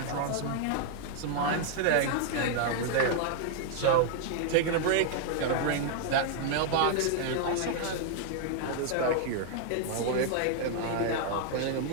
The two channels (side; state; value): both; different; correlation 0.00